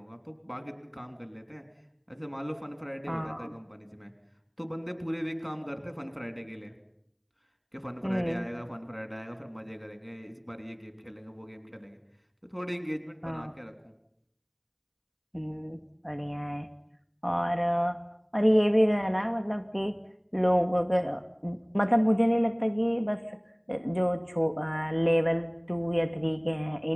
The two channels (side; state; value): both; identical; correlation 1.00